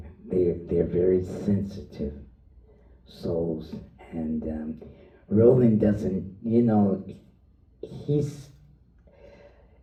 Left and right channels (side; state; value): both; identical; correlation 1.00